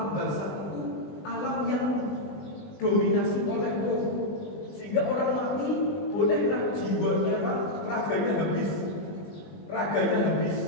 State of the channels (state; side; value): late; right; 20 ms